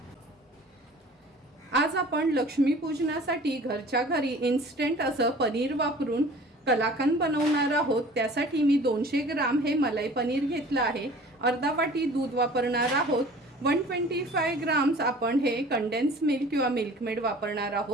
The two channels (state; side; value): normal; both; correlation 0.46